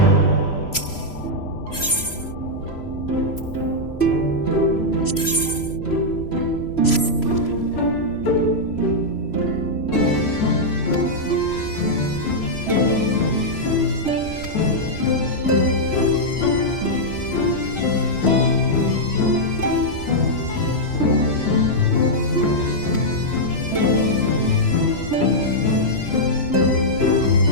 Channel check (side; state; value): right; late; 3.0 ms